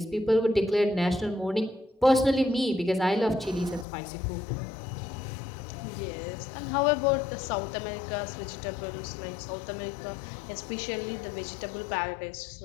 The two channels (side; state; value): right; drops out; at 3.9 s